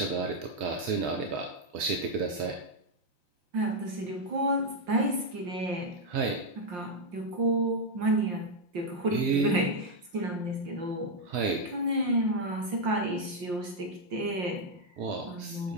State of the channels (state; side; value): late; left; 5.7 ms